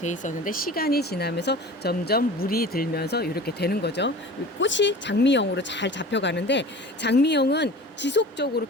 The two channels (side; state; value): both; normal; correlation 0.39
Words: 있었는데 시간이 지나면서 점점 물이 들면서 이렇게 되는 거죠. 꽃이 장미형으로 잘 잡혀가는데 장미형은 지속적으로